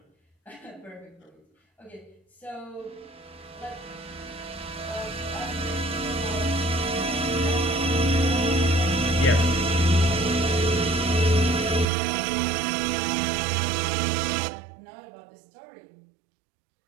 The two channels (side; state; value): left; drops out; at 11.9 s